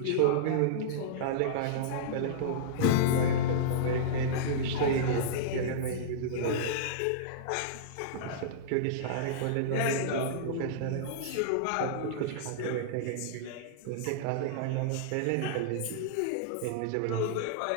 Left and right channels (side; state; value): both; different; correlation -0.03